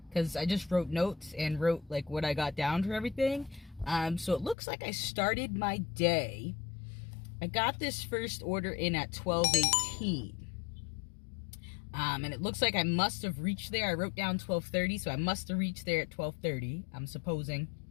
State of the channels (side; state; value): right; drops out; at 4.5 s